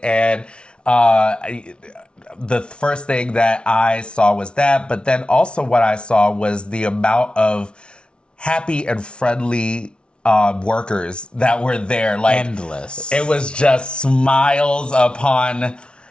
and the first thing that I saw was that, but then also what I saw was the amount of happy and friendly workers that were there. Like, endless. It was just smiles upon.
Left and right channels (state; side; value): late; right; 0.057 ms